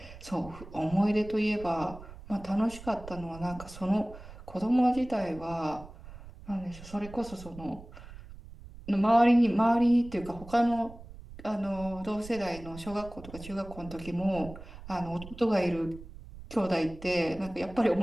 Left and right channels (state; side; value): noise; right; rumble, 16 dB below the sound